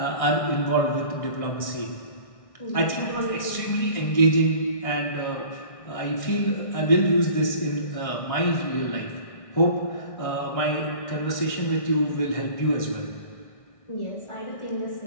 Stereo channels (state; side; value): late; right; 1.6 ms